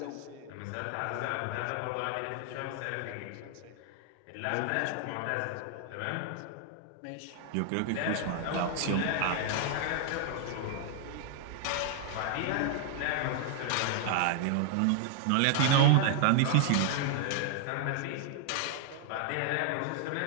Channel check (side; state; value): both; different; correlation 0.00